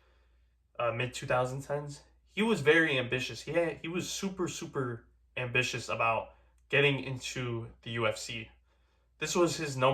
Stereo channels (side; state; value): both; identical; correlation 1.00